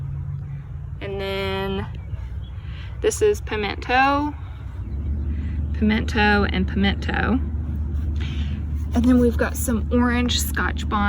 And then this is pimento, and pimento. And then we've got some orange Scotch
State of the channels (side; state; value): both; identical; correlation 1.00